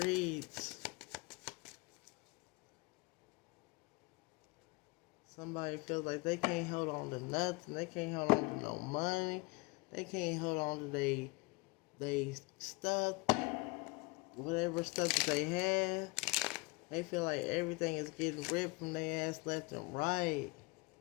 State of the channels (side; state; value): right; quieter; 26.4 dB